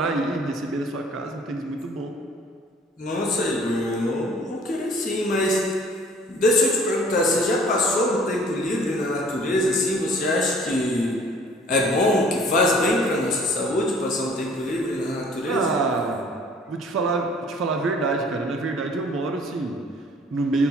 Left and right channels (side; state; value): both; normal; correlation 0.54